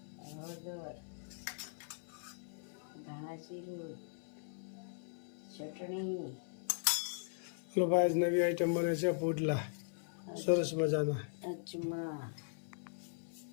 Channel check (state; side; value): silent; right; 52 dB below the other